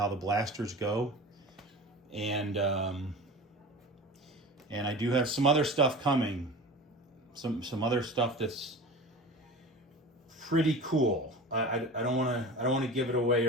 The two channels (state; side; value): normal; both; correlation 0.34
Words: the blasters go. And I do have some other stuff coming. Some other stuff that's pretty cool. I don't want to give it away